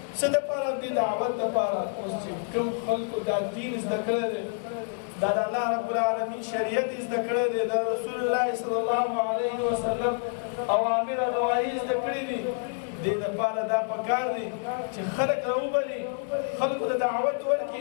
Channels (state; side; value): silent; right; 59 dB below the other